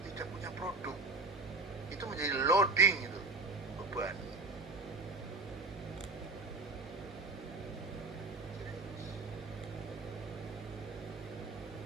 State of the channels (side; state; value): left; quieter; 3.5 dB